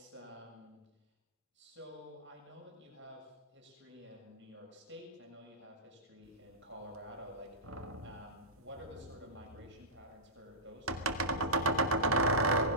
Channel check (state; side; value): normal; both; correlation -0.18